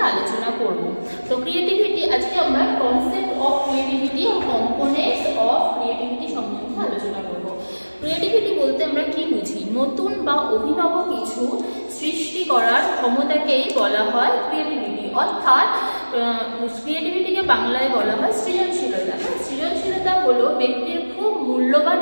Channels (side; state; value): both; inverted; correlation -1.00